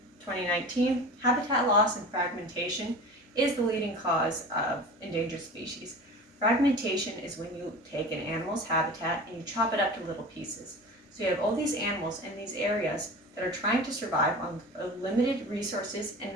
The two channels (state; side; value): normal; both; correlation 0.36